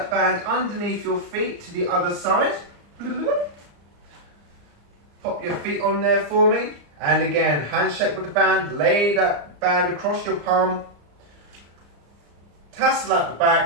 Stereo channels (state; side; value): late; left; 34 ms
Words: band underneath your feet to the other side. Pop your feet on there for me. And again, handshake with the band, lay that band across your palm. Tassel at the